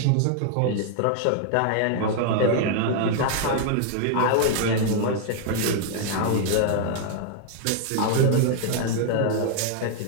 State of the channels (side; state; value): both; different; correlation 0.00